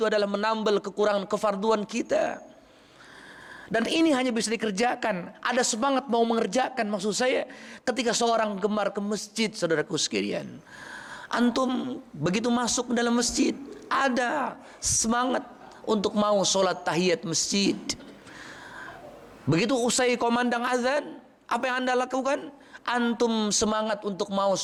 adalah menambal kekurangan kefarduan kita. Dan ini hanya bisa dikerjakan, ada semangat mau mengerjakan, maksud saya ketika seorang gemar ke masjid, saudaraku sekalian. Antum begitu masuk ke dalam masjid, ada semangat untuk mau sholat tahiyat masjid. Begitu usai komandang azan, apa yang Anda lakukan? Antum semangat untuk mau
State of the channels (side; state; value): both; identical; correlation 1.00